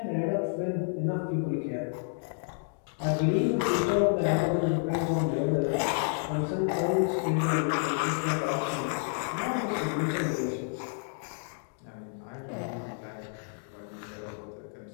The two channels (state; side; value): silent; right; digital silence